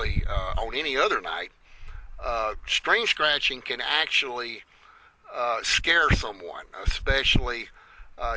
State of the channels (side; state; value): both; identical; correlation 1.00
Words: on any other night. Screen scratching can actually scare someone, especially